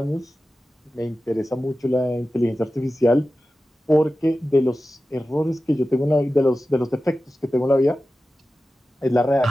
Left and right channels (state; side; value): normal; both; correlation 0.94